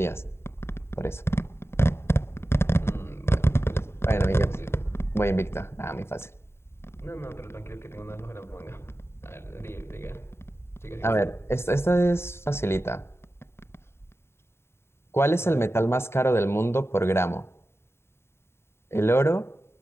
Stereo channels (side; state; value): right; late; 0.12 ms